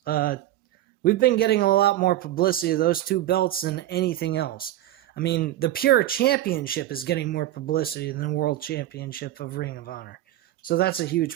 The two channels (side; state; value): left; quieter; 14.1 dB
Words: We've been getting a lot more publicity of those two belts than anything else. I mean, the Pure Championship is getting more publicity than the World Championship of Ring of Honor. So that's a